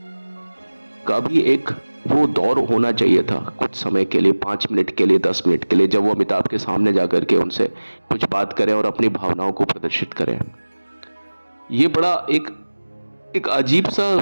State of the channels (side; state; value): both; inverted; correlation -1.00